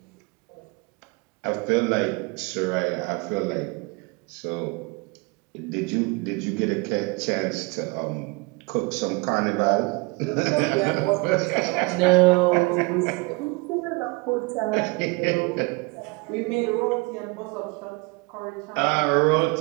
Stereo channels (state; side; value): quieter; left; 27.1 dB